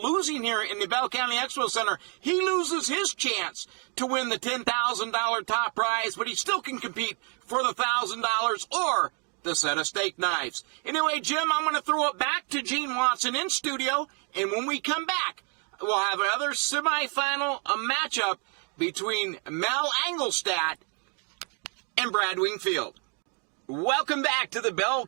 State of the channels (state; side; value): quieter; left; 37.3 dB